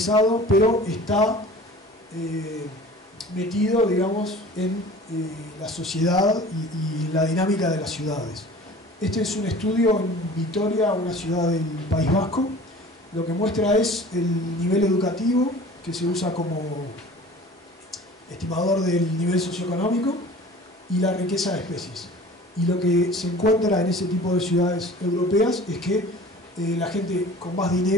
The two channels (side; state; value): both; normal; correlation 0.43